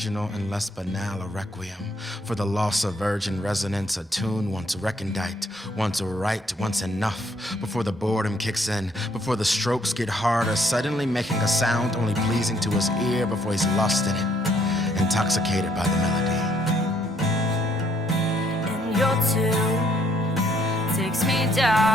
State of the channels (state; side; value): normal; both; correlation 0.68